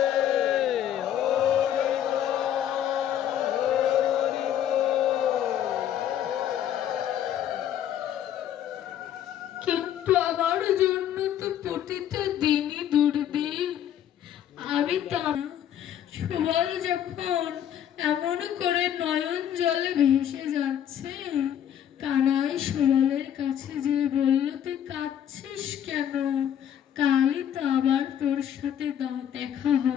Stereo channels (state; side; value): quieter; right; 10.2 dB